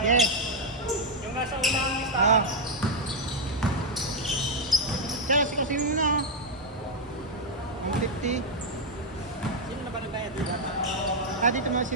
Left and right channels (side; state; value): both; normal; correlation 0.01